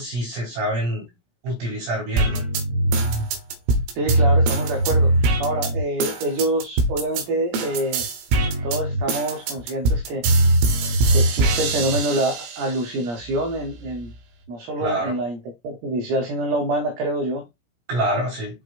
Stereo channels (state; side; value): late; left; 17 ms